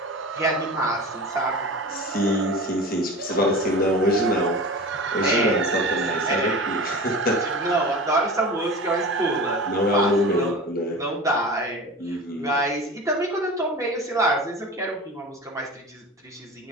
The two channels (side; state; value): both; normal; correlation 0.34